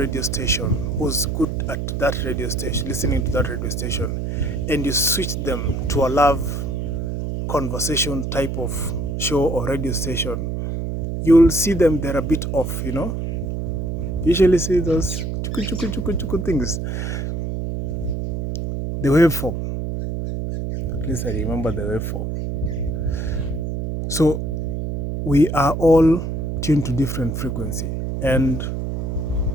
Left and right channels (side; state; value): right; noise; hum, 2 dB below the sound